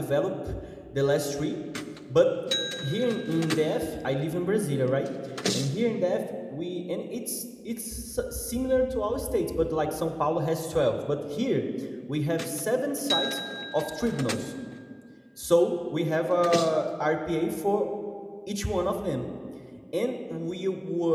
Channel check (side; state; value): both; identical; correlation 1.00